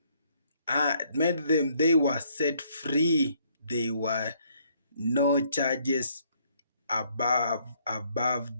they were set free. They were no charges above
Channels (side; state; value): both; inverted; correlation -0.67